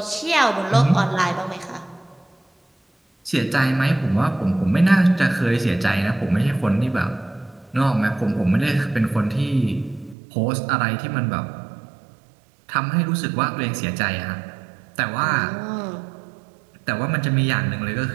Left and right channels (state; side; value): drops out; left; at 10.2 s